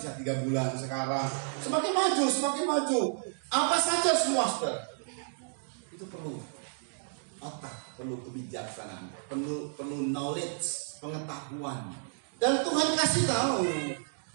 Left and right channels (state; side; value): silent; left; digital silence